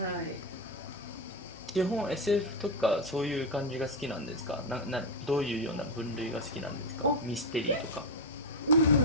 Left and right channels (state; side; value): normal; both; correlation 0.09